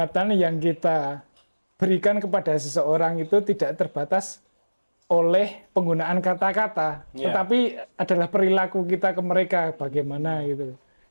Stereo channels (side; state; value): both; inverted; correlation -1.00